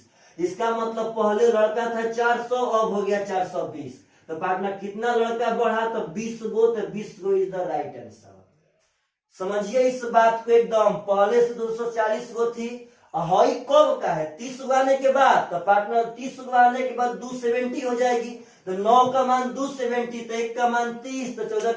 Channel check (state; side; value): identical; both; correlation 1.00